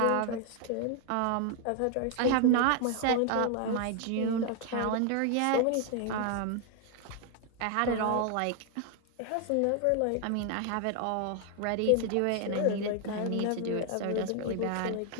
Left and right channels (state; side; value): different; both; correlation 0.00